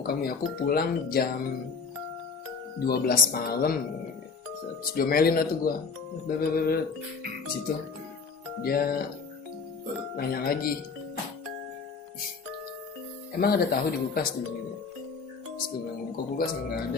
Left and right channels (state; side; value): quieter; right; 5.0 dB